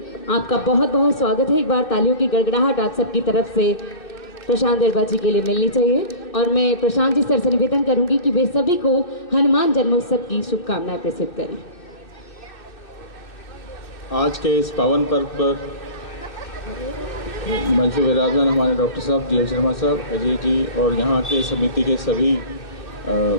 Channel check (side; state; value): right; late; 2.6 ms